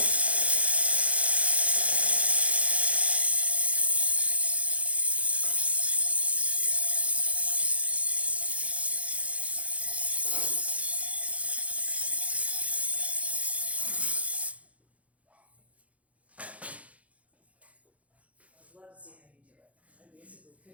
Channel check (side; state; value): left; late; 0.066 ms